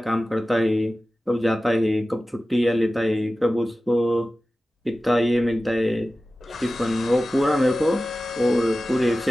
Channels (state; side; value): normal; both; correlation 0.95